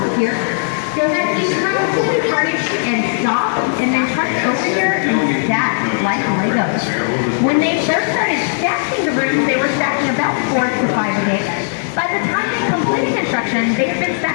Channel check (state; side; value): silent; right; digital silence